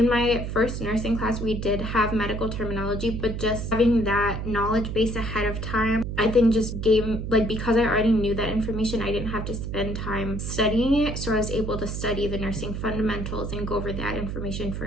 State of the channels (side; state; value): right; noise; hum, 4 dB below the sound